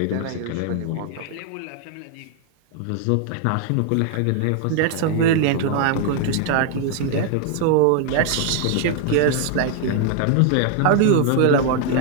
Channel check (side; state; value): both; different; correlation 0.00